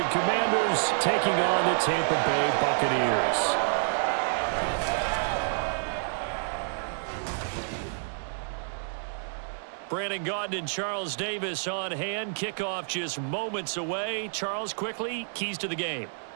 Commanders taking on the Tampa Bay Buccaneers. Brandon Gaudin and Charles Davis on hand. Kickoff just moments away. Charles, quickly, keys to the game.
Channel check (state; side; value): silent; left; 59 dB below the other